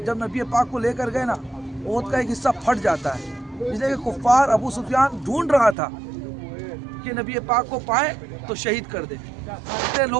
جب نبی پاک کو لے کر گئے نا احد کا ایک حصہ پھٹ جاتا ہے، اس لیے کہ کفار ابو سفیان ڈھونڈ رہا تھا کہ نبی پاک کو پائے تو شہید کر دے،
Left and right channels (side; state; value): left; drops out; at 5.8 s